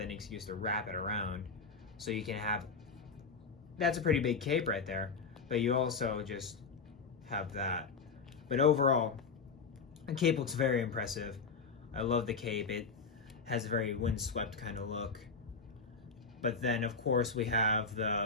an excuse to wrap it around. So you can have, that's a pretty big cape right there, but you also just have that. But overall, the cape looks very impressive. I love the cape. It has a very windswept kind of look. But then, of course, we have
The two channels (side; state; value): right; quieter; 4.8 dB